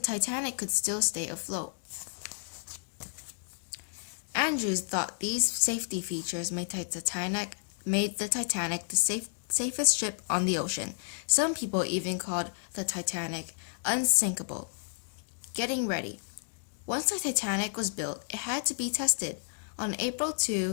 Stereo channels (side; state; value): right; silent; digital silence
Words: could still stay afloat. Andrews thought these safety features made the Titanic the safest ship on the ocean. Some people even called the Titanic unsinkable. Getting ready. Once the Titanic was built, it had to be tested. On April